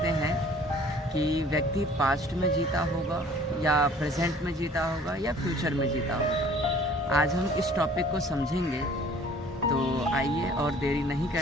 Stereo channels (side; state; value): both; normal; correlation 0.52